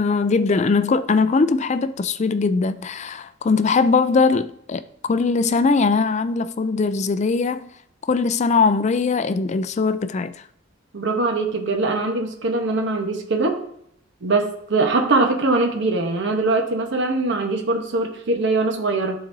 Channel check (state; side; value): normal; both; correlation 0.28